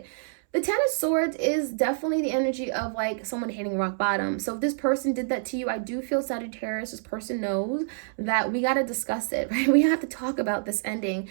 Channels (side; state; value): left; silent; 60 dB below the other